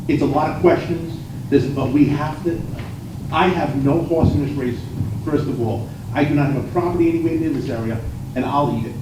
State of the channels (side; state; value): both; identical; correlation 1.00